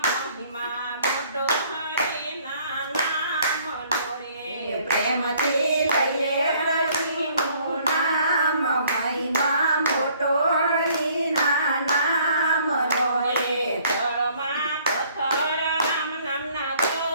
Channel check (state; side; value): inverted; both; correlation -0.60